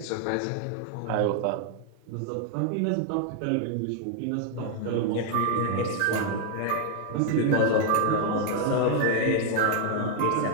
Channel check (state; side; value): different; both; correlation 0.00